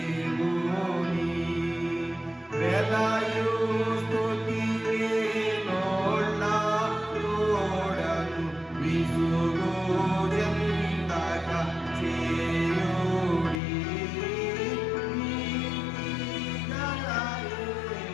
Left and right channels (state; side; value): drops out; right; at 13.6 s